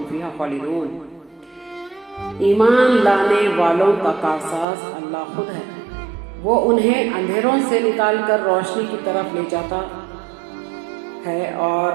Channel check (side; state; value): left; drops out; at 4.7 s